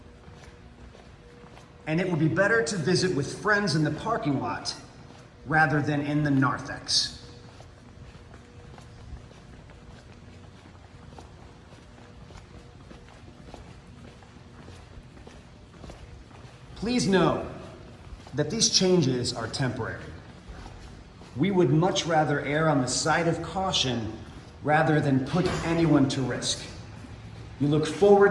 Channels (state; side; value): identical; both; correlation 1.00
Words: And it would be better to visit with friends in the parking lot rather than in the narthex. Please know that these changes are temporary. We would much rather err on the side of caution rather than put anyone to risk. We look